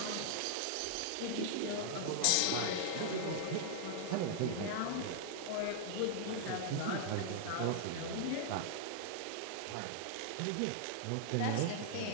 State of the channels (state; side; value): different; both; correlation -0.01